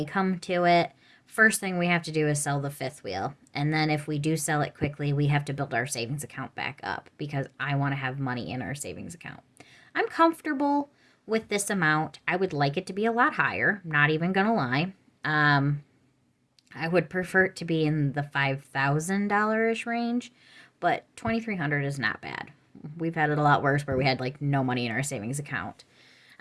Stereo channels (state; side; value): identical; both; correlation 1.00